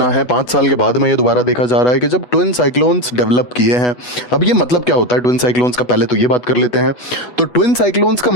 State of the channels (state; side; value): late; right; 8.1 ms